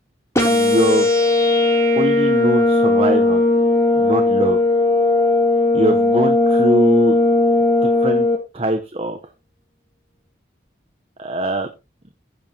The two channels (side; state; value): both; normal; correlation 0.57